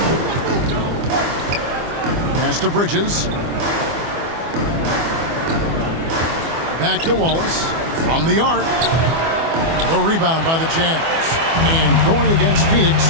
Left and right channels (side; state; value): left; late; 24 ms